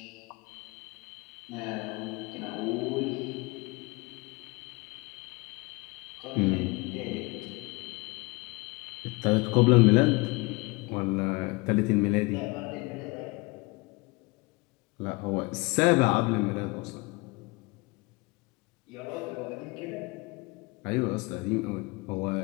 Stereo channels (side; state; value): right; quieter; 25.6 dB